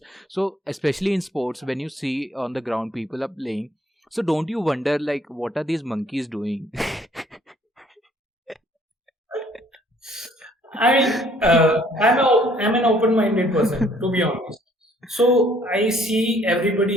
So especially in sports, when you see on the ground people are playing, so don't you wonder like what are these monkeys doing? I'm an open-minded person, to be honest. So I see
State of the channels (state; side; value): normal; both; correlation 0.61